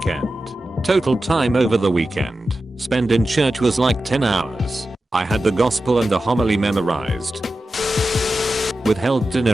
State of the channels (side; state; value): both; normal; correlation 0.92